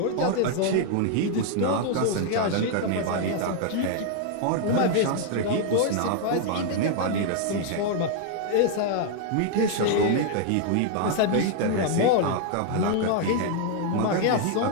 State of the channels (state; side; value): different; both; correlation 0.00